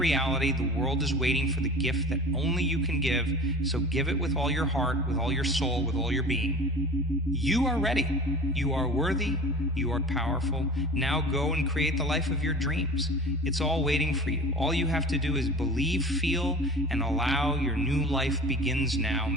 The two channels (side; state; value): both; normal; correlation 0.39